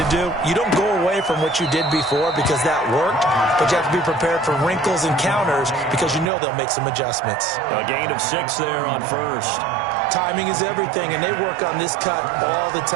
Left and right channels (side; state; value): left; drops out; at 6.3 s